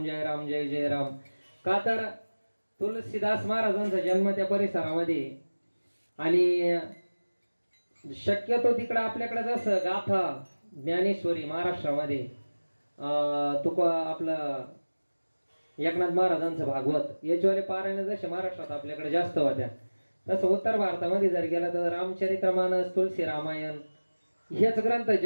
जय राम जय जय राम. का तर तुलसीदास महाराजांचा जन्म त्या परिसरामध्ये आणि शक्यतो तिकडं आपल्याकडे जसं गाथा ज्ञानेश्वरी महाराष्ट्रामध्ये तुका आपलं एकनाथ महाराजांचं भागवत याच्यावाले पारायण जसे महाराष्ट्रात आपल्याकडे जास्त होत्या तसं उत्तर भारतामध्ये जर गेलं तर रामचरित्रमानस तुलसी रामायण हेच ग्रंथ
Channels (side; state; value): both; inverted; correlation -1.00